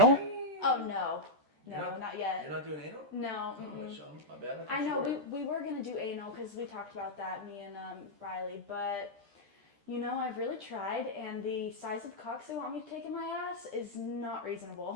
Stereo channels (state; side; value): late; left; 13 ms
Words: Oh no. You're No, not- not yet. You're not doing anal? No. Oh, mm-mm. my bad. I know, Sure. we were going to do anal because we talked about that, me and Riley, but you know, I've really tried, and the size of cocks they want me to take in my ass is not